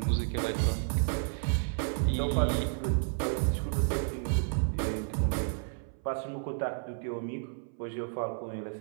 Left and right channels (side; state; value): left; silent; 57 dB below the other